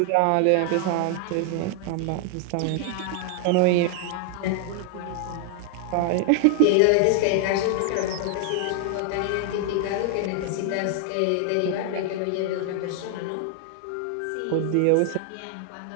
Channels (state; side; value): different; both; correlation 0.00